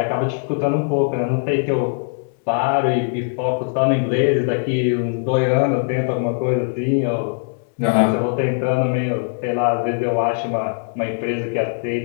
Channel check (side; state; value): right; silent; digital silence